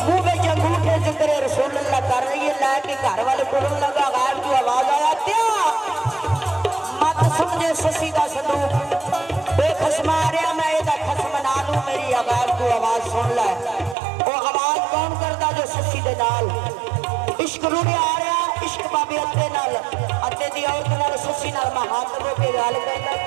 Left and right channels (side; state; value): left; drops out; at 14.0 s